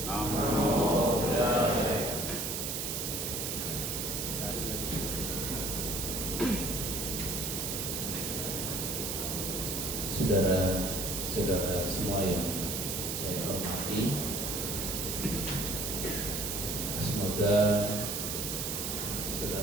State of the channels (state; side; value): noise; right; hiss, 2 dB below the sound